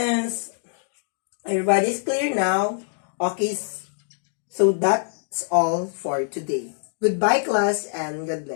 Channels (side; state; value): right; silent; digital silence